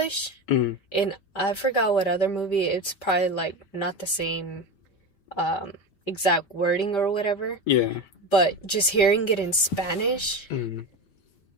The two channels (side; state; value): right; late; 5.1 ms